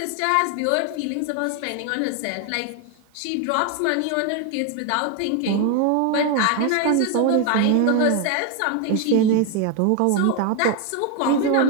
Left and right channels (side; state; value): both; different; correlation 0.01